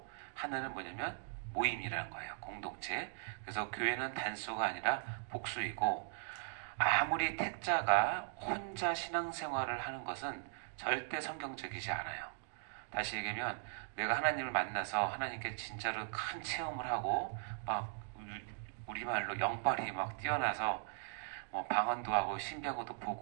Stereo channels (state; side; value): silent; left; digital silence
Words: 하나는 뭐냐면 모임이라는 거예요. 공동체. 그래서 교회는 단수가 아니라 복수이고 아무리 택자가 혼자 신앙생활을 하는 것은 절대 성경적이지 않아요. 다시 얘기하면 내가 하나님을 만나서 하나님께 진짜로 큰 체험을 하고 막 우리말로 영빨이 막 뛰어나서 뭐 방언도 하고 신비한것도